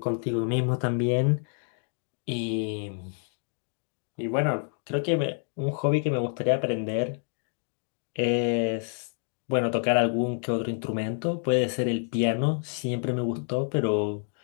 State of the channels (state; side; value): silent; right; 59 dB below the other